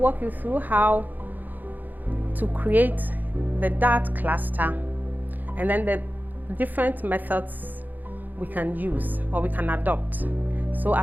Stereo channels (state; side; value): late; left; 0.085 ms